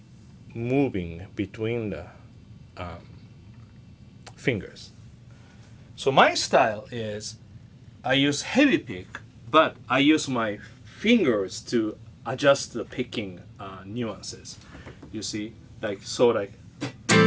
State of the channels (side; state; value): both; identical; correlation 1.00